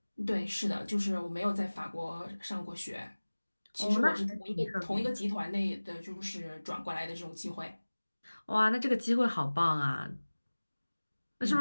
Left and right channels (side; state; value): both; inverted; correlation -1.00